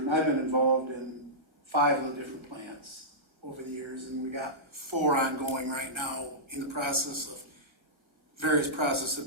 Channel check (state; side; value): late; left; 1.4 ms